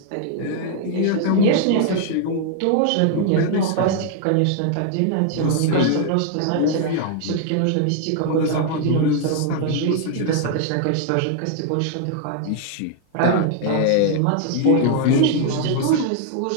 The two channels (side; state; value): both; different; correlation 0.00